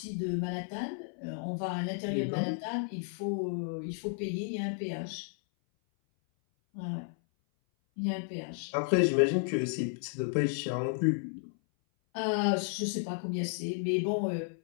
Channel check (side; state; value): right; silent; 56 dB below the other